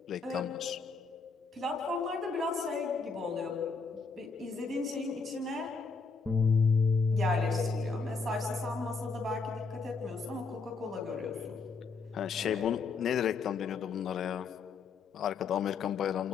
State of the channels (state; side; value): quieter; right; 4.7 dB